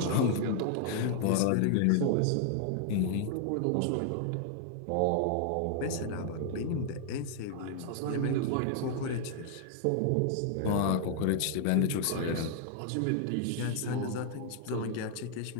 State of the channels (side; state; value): both; different; correlation 0.00